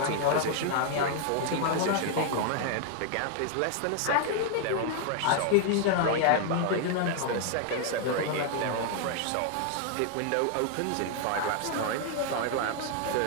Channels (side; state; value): both; different; correlation 0.00